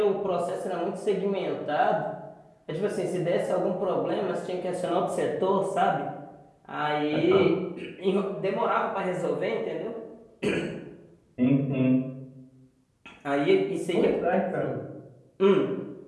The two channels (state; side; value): identical; both; correlation 1.00